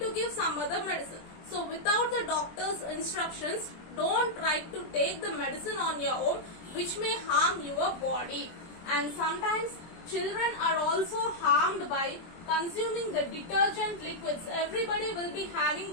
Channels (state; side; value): late; right; 23 ms